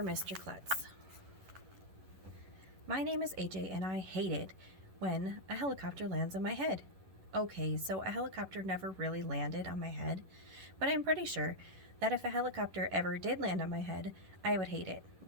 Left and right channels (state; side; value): late; left; 11 ms